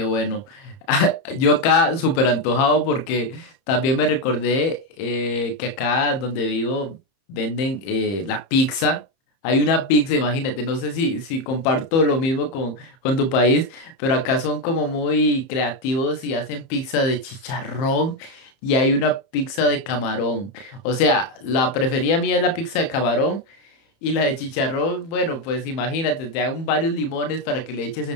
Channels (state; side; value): late; right; 30 ms